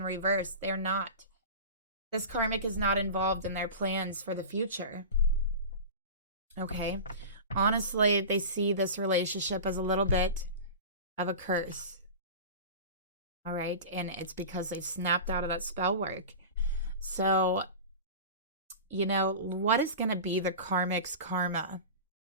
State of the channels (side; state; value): both; inverted; correlation -0.31